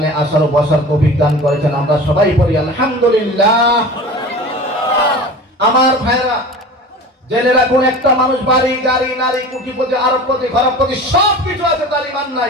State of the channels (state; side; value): normal; both; correlation 0.37